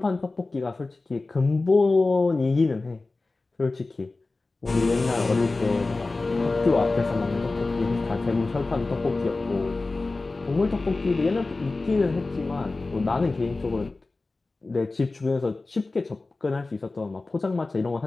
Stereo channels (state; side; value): quieter; right; 3.4 dB